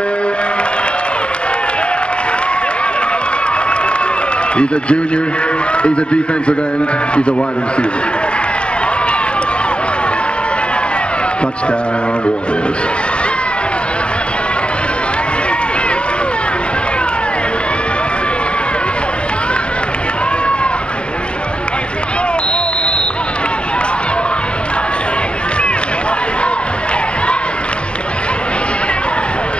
He's a junior, he's a defensive end, he's a wide receiver. Touchdown, Warriors.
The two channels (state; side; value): late; right; 0.054 ms